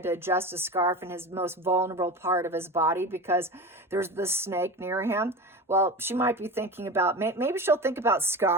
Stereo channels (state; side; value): normal; both; correlation 0.28